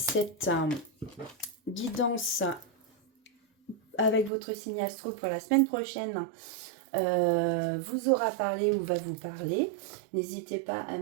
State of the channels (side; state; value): left; drops out; at 4.3 s